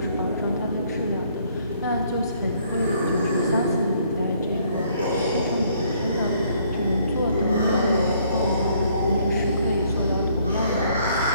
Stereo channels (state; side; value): inverted; both; correlation -0.64